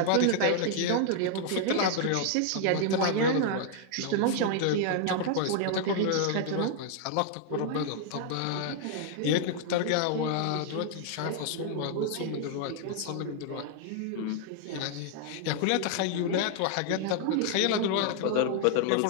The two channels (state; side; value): different; both; correlation 0.00